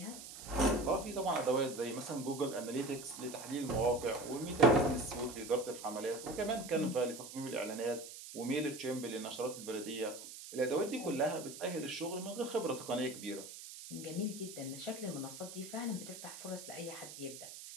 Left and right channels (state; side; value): noise; right; hiss, 12 dB below the sound